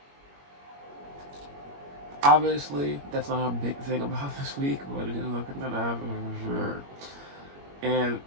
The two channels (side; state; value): left; late; 21 ms